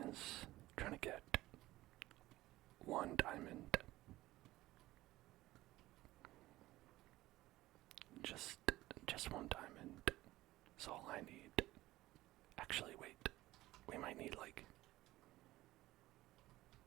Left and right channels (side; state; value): left; quieter; 17.1 dB